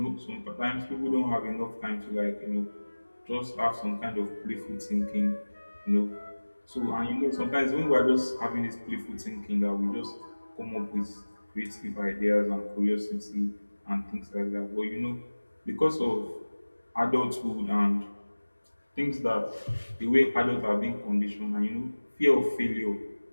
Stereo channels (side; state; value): both; inverted; correlation -1.00